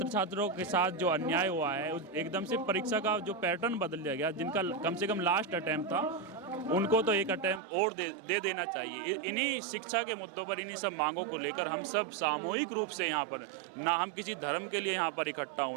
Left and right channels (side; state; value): left; drops out; at 7.6 s